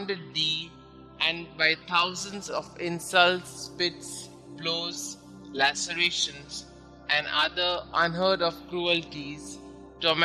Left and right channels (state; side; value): identical; both; correlation 1.00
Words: thee, and by thousands of insults, spits, blows, lacerations, and other unheard of cruelties